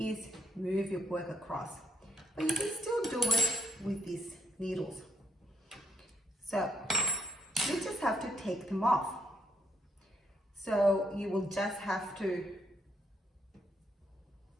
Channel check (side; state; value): both; normal; correlation 0.74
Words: move your work across. But you can still do it with these needles. So you just have to take them off. So you will just have to